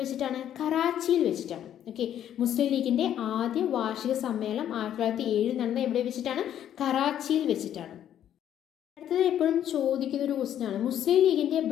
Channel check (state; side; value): quieter; right; 10.6 dB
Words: വെച്ചിട്ടാണ്? കറാച്ചിയിൽ വെച്ചിട്ടാണ്. ഓക്കെ, മുസ്ലിം ലീഗിന്റെ ആദ്യ വാർഷിക സമ്മേളനം 1907 നടന്നത് എവിടെ വെച്ചിട്ടാണ്? കറാച്ചിയിൽ വെച്ചിട്ടാണ്. അടുത്തത് എപ്പോഴും ചോദിക്കുന്ന ഒരു ക്വസ്റ്റ്യൻ ആണ്, മുസ്ലിം ലീഗിന്റെ